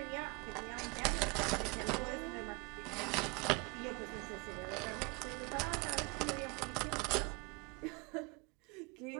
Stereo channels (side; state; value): left; quieter; 28.2 dB